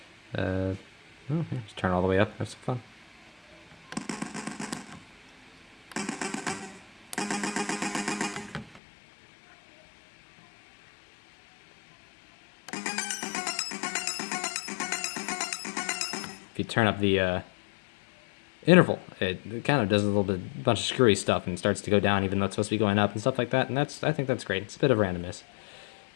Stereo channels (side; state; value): right; drops out; at 8.8 s